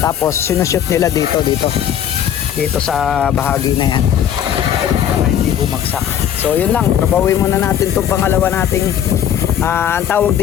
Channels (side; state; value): right; quieter; 9.8 dB